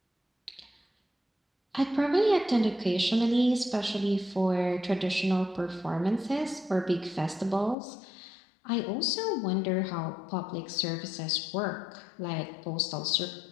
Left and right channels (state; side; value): drops out; right; at 7.8 s